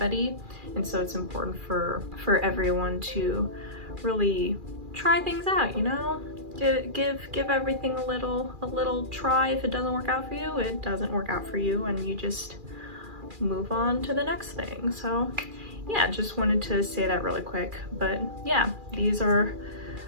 And so it's important for everyone to really try things out, you know? Give everything a little try. If it doesn't work out for you, it doesn't work out for you, and you just move on to the next thing. So yeah, just wanted to say that really quick. But yeah, these are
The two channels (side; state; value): left; late; 2.4 ms